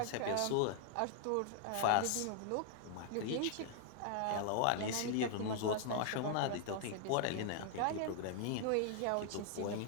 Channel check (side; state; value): both; different; correlation 0.00